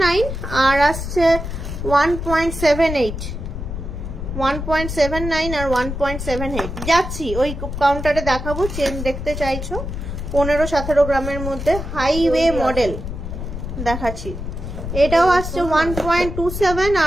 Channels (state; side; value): noise; left; rumble, 6 dB below the sound